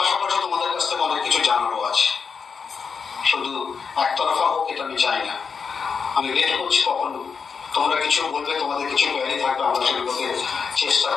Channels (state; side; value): quieter; right; 5.8 dB